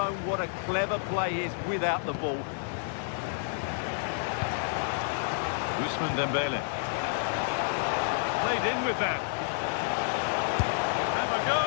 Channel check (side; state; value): right; silent; digital silence